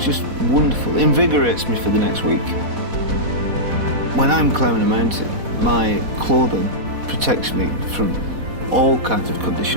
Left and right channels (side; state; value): left; late; 4.1 ms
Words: wonderful. It invigorates me for the next week. When I'm climbing a mountain, my clothing protects me from all kinds of